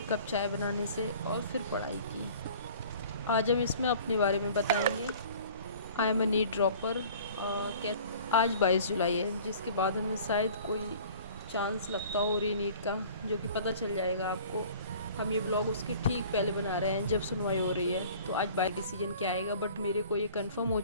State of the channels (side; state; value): both; inverted; correlation -0.48